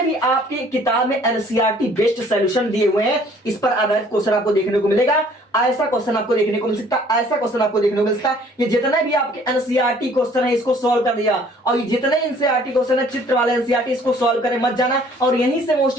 भी आपके किताब में एनसीईआरटी बेस्ड सॉल्यूशन दिए हुए हैं, इस पर आधारित क्वेश्चन आपको देखने को मिलेगा। ऐसा क्वेश्चन आपको देखने को मिल सकता है, ऐसा क्वेश्चन आपको देखने को मिल सकता है। ये जितने भी आपके एनसीईआरटी क्वेश्चन है इसको सॉल्व कर दिया, और ये जितने एनसीईआरटी क्वेश्चन है चित्र वाले एनसीईआरटी, इसको सॉल्व करें मत जाना। और यहीं से मोस्ट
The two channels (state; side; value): normal; both; correlation 0.57